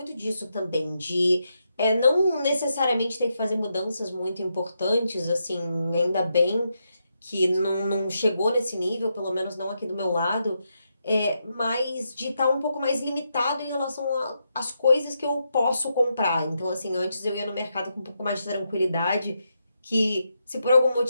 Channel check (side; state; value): both; inverted; correlation -0.83